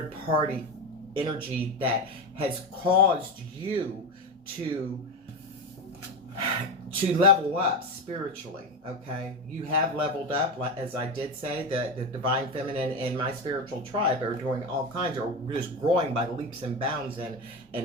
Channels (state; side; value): normal; both; correlation 0.18